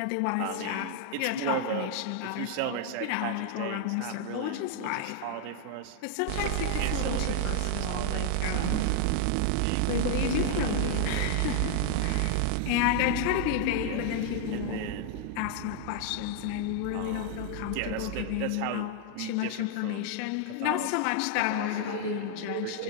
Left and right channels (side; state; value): both; different; correlation 0.00